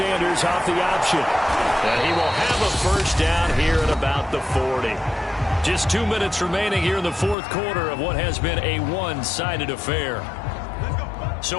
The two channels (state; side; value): drops out; right; at 7.4 s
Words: off the option. And he will have a first down here at about the 40. Just 2 minutes remaining here in the 4th quarter of what has been a one-sided affair.